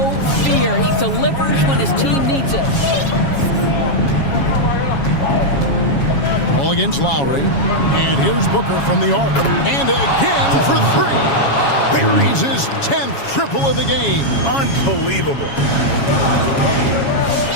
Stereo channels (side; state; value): right; late; 7.2 ms